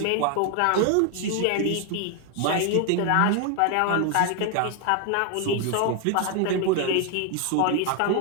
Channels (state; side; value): different; both; correlation 0.00